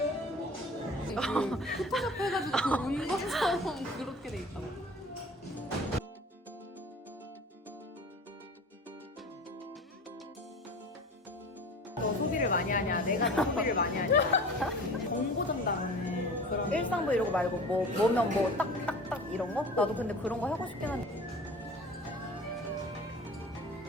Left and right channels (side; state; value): both; normal; correlation 0.39